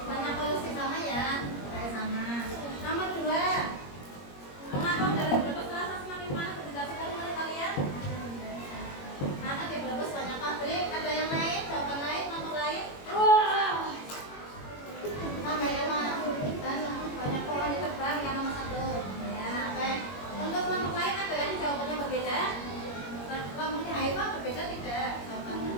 Banyak polusi sama ya? Kayak sama. Nomor 2, mengapa udara di Brebes terasa semakin panas? Dijelaskan menurut kalian? Karena di Brebes banyak pabrik. Ada yang lain? Jawaban lain? Nomor lain? Sama ya Mas. Dan banyak pohon ditebang yang nomor 1. Ya, oke. Untuk kelompok lain ada yang jawabannya berbeda? Kelompoknya Haifa berbeda tidak jawabannya?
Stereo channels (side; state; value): right; late; 21 ms